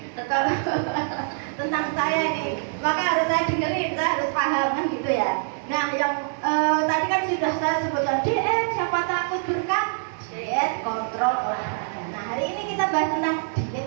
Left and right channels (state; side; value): silent; left; 62 dB below the other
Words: kalau tentang saya ini, maka harus saya dengerin, saya harus paham kan gitu ya. Nah, yang tadi kan sudah saya sebutkan diet, siapa takut berkat diet kontrol olahraga. Nah, hari ini kita bahas tentang